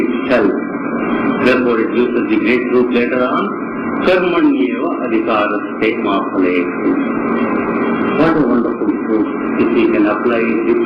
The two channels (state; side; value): identical; both; correlation 1.00